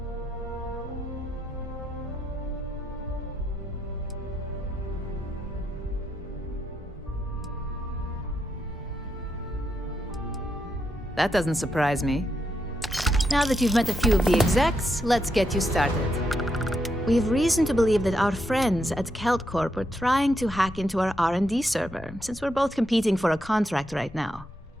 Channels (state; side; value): normal; both; correlation 0.81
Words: That doesn't surprise me. Now that you've met a few of the execs, let's get you started. We have reason to believe that our friends at Kelt Corp are trying to hack into our R&D server, since we're both competing for a contract right now.